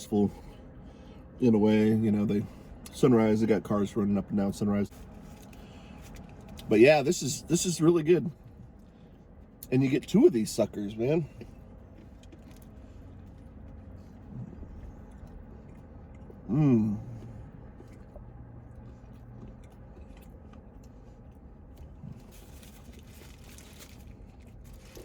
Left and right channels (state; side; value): identical; both; correlation 1.00